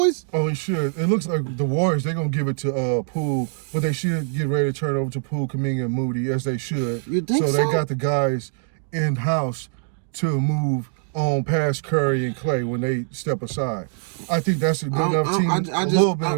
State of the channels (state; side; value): silent; left; digital silence